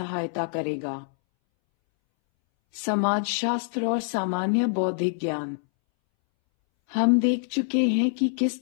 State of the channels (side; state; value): right; silent; 61 dB below the other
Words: करेगा। समाजशास्त्र और सामान्य बौद्धिक ज्ञान। हम देख चुके हैं कि किस